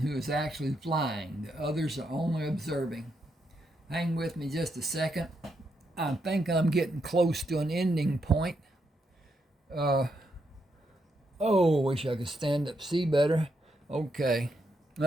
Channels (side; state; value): both; normal; correlation 0.80